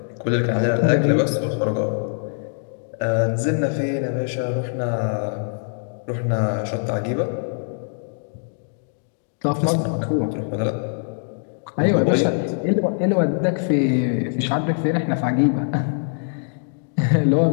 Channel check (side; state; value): right; silent; digital silence